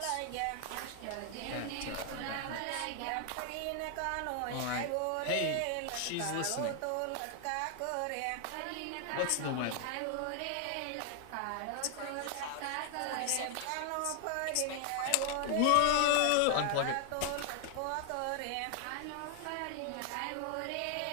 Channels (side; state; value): both; different; correlation 0.00